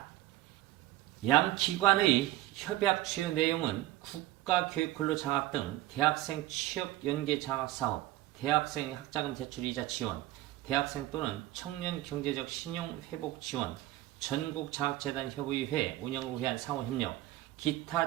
양 기관의 협약 주요 내용은 국가교육근로장학 등 대학생 취업 연계 장학 사업, 대학생 학자금 대출 이자 지원, 대학생 또는 청년 경제적 신용 회복 지원, 전국장학재단 협의회 운영을 위한 상호협력,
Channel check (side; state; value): left; quieter; 16.0 dB